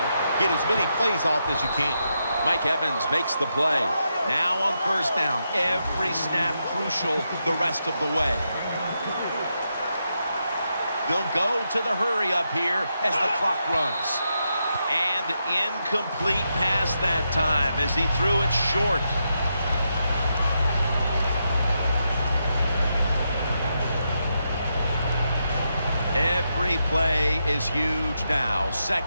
get as many plays off as you can. Mike Evans makes the play. Now on 1st down, every snap crucial the rest of the way. They'll go to the hurry-up here as the clock runs. And incomplete pass that time as he threw it short. Every play is huge now.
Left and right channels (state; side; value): inverted; both; correlation -0.84